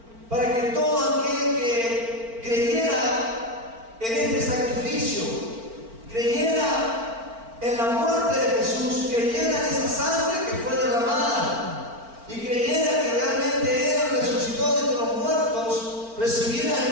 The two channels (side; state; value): left; late; 4.4 ms